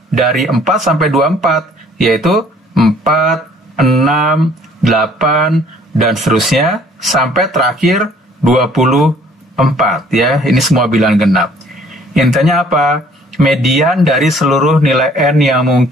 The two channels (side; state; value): both; normal; correlation 0.58